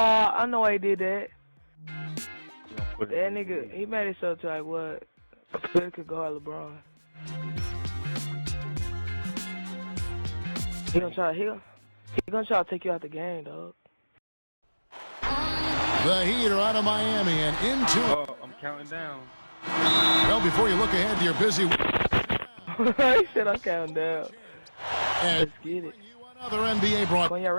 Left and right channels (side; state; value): both; inverted; correlation -1.00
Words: know why he did that. That nigga, he made himself to like what? Phil could guard LeBron. He gonna try to take you out the game, dog. The Heat are out of Miami and into. Oh, I'm counting down. Well, before you look ahead to your busy. He said I'm counting down. Let's get it. Another NBA broadcast. When y'all